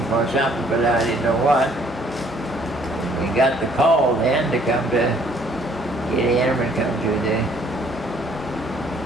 for something, but I didn't know what. We got the call then to come to get in and come to the...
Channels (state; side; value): normal; both; correlation 0.61